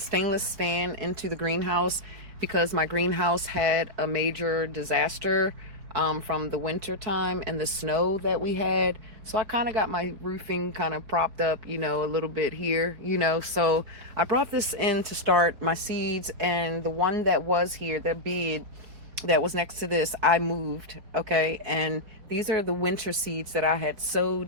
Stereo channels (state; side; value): late; left; 4.6 ms